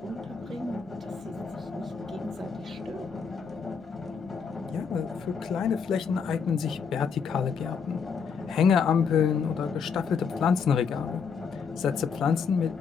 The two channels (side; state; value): right; quieter; 6.0 dB